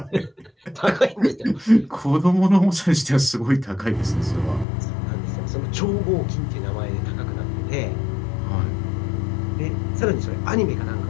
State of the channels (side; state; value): right; drops out; at 4.7 s